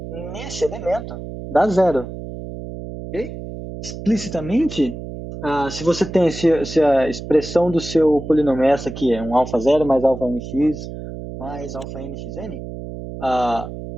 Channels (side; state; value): right; noise; hum, 10 dB below the sound